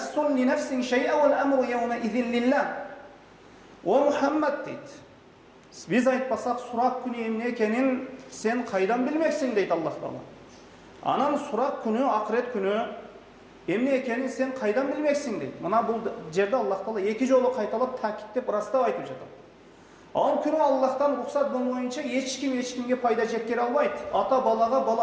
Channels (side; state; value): both; identical; correlation 1.00